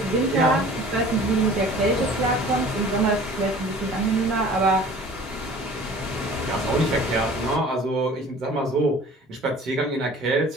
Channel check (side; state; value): both; normal; correlation 0.46